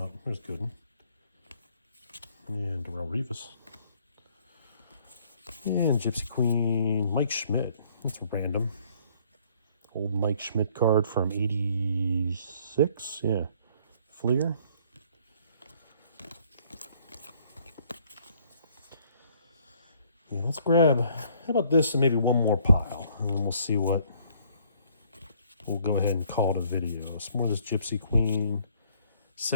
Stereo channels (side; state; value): both; inverted; correlation -0.62